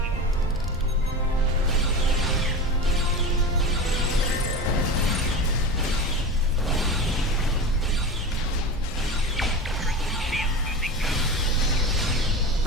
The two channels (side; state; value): both; normal; correlation 0.28